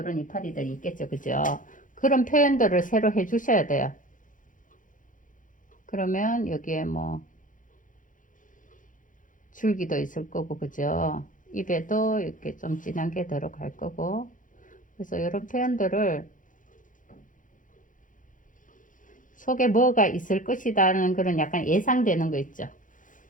이파리들이 있겠죠. 그죠? 그런 표현들을 새로 해 주셔야 돼요. 그러면 여기에 뭐 줄기도 있을 거고, 그죠? 입에도 이렇게 좀 진한 게 들어갈 거고, 그래서 이런 표현들을 속에 뭐가 있을 것이라는 그런 약간 예상되는 거 있죠.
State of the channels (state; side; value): late; right; 0.38 ms